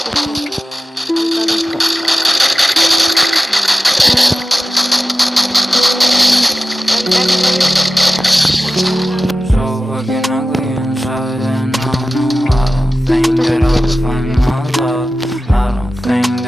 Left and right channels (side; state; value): both; normal; correlation 0.95